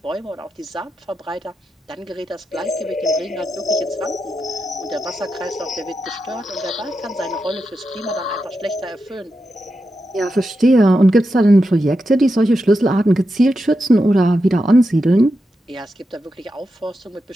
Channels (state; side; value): normal; both; correlation 0.88